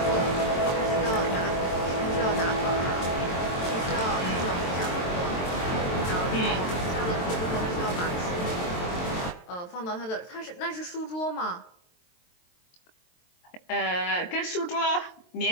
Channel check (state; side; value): late; right; 23 ms